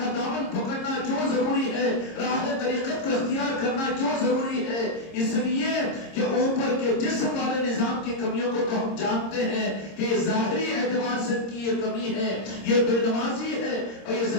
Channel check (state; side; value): late; right; 26 ms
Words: دامن پکڑنا کیوں ضروری ہے، راہ طریقت کو اختیار کرنا کیوں ضروری ہے؟ اس لیے کہ اوپر کے جسم والے نظام کی کمیوں کو تو ہم جانتے ہیں کہ ظاہری اعتبار سے کی یہ کمی ہے، یہ بے نمازی ہے اور یہ